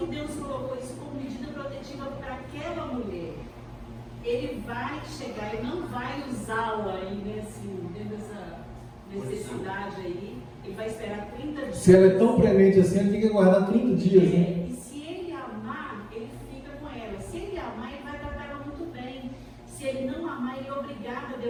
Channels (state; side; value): identical; both; correlation 1.00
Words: Deus colocou isso como medida protetiva para aquela mulher. Ele vai chegar e não vai usá-la aí, né, assim, dentro dessa necessidade aí. Ele vai esperar 30 dias. Se ela é tão premente assim, ele tem que aguardar 30 dias, né? E se ele amar, ele fica com ela. Se ele amar, ele vai tratar ela muito bem. Se ele não amar, ele é obrigado a